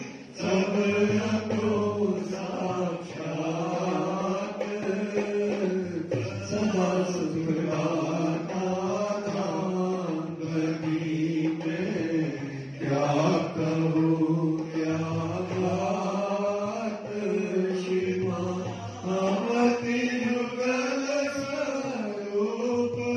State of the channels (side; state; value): both; identical; correlation 1.00